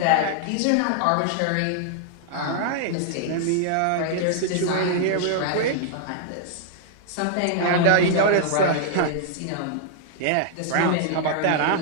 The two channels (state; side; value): different; both; correlation -0.01